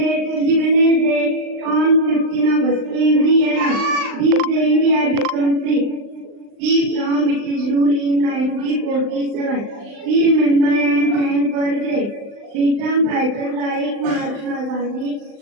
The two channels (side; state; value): left; late; 39 ms